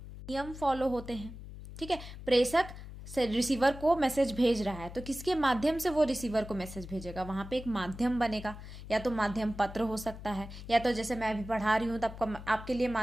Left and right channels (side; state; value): left; noise; hum, 13 dB below the sound